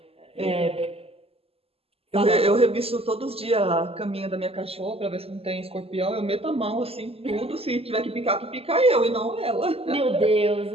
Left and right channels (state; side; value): late; left; 0.28 ms